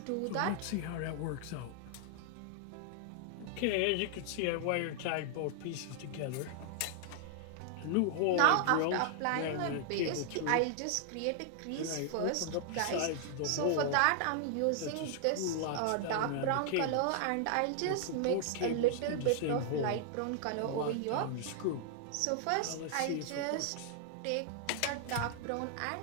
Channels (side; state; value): both; different; correlation 0.00